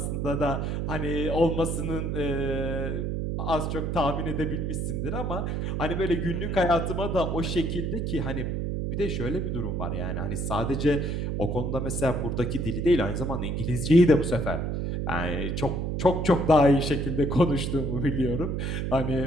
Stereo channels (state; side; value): noise; right; hum, 1 dB below the sound